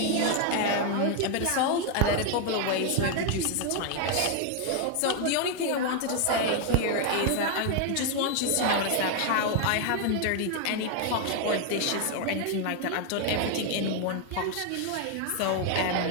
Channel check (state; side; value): different; both; correlation 0.00